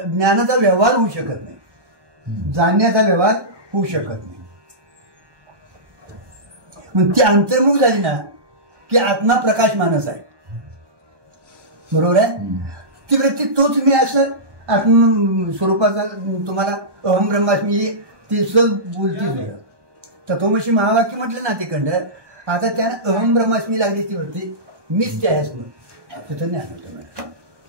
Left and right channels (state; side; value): late; left; 1.2 ms